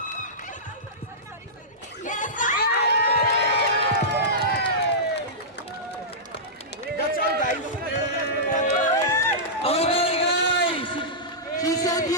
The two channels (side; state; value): both; normal; correlation -0.15